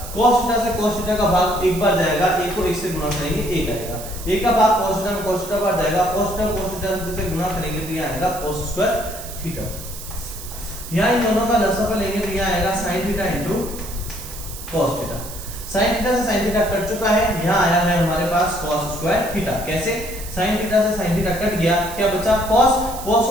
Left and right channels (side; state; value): right; noise; hiss, 12 dB below the sound